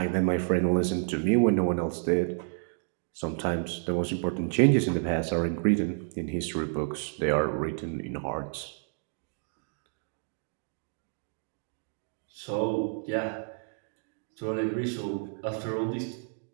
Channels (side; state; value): left; silent; 58 dB below the other